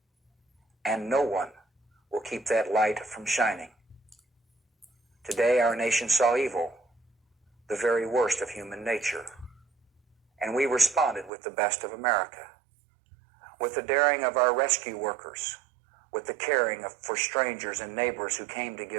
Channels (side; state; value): left; drops out; at 11.3 s